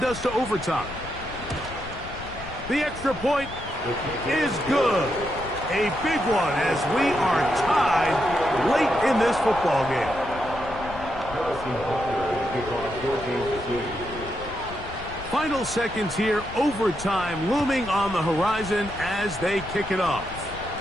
us to overtime. The extra point is good. A big one as we are tied late in this football game. Final seconds here, overtime looming on the horizon as they kick it off.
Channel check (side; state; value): left; noise; rumble, 14 dB below the sound